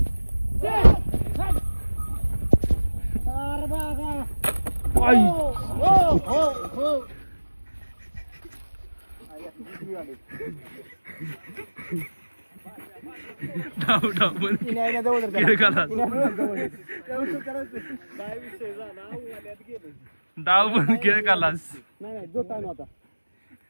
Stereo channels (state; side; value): inverted; both; correlation -1.00